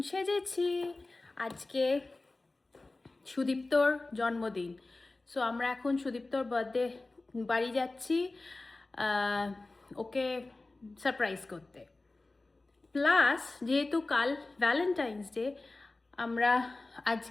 সেজেছি, আজকে সুদীপ্তর জন্মদিন। সো আমরা এখন সুদীপ্তর বার্থডে বাড়ি যাচ্ছি ওকে সারপ্রাইজ করতে। প্লাস যেহেতু কাল ভ্যালেন্টাইন্স ডে, আমরা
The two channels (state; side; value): quieter; right; 3.2 dB